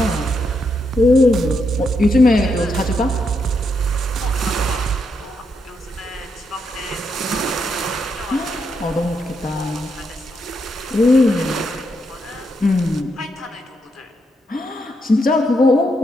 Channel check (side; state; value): both; normal; correlation 0.80